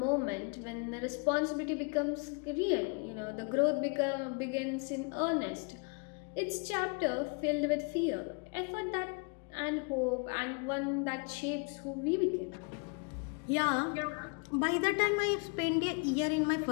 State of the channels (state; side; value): quieter; right; 35.4 dB